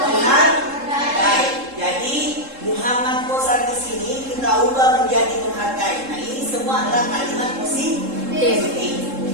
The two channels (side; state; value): left; late; 3.7 ms